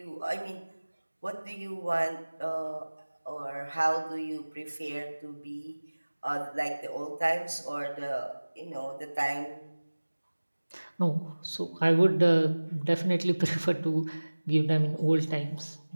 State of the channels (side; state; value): both; inverted; correlation -1.00